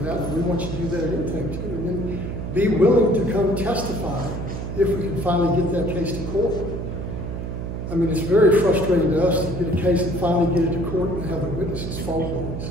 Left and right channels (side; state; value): right; noise; hum, 5 dB below the sound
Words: that, and we want you to do that at intake too. And then be willing to come testify if we can finally get that case to court. I mean, it's very frustrating to us to get a case and finally get it to court and have the witnesses phone calls.